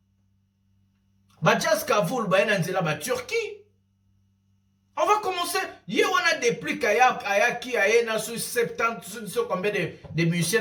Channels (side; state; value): both; identical; correlation 1.00